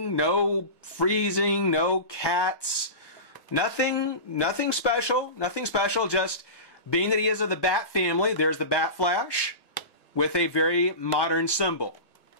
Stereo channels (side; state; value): right; late; 1.1 ms